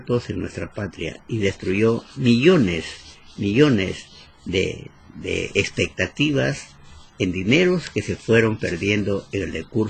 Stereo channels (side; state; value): both; identical; correlation 1.00